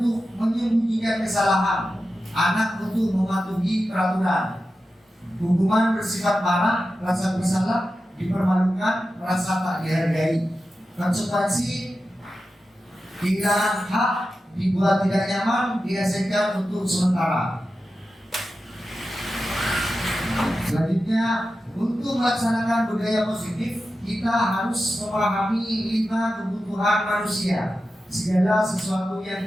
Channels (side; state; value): both; normal; correlation 0.92